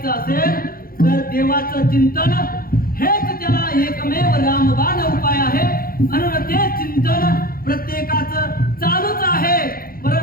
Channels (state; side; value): late; right; 0.42 ms